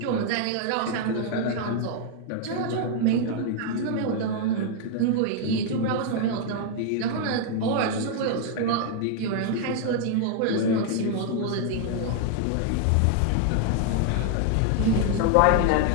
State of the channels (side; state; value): both; different; correlation 0.00